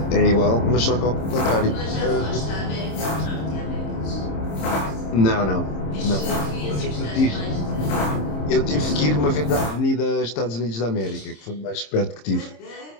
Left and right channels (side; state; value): right; late; 26 ms